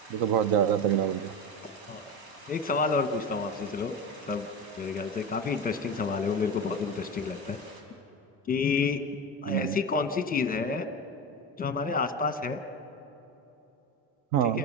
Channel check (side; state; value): both; normal; correlation 0.23